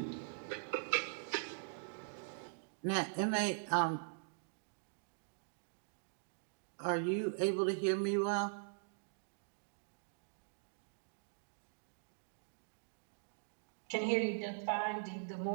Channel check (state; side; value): silent; left; digital silence